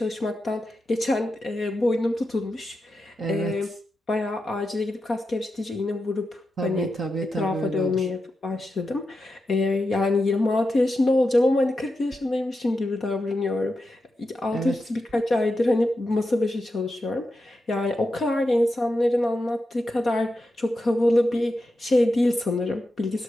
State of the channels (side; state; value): both; normal; correlation 0.89